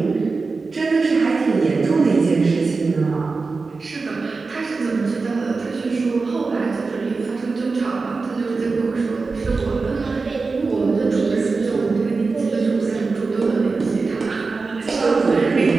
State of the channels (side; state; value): left; quieter; 4.1 dB